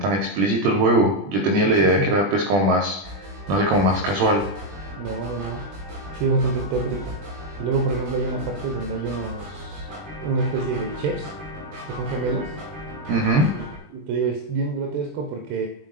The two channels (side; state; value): left; late; 20 ms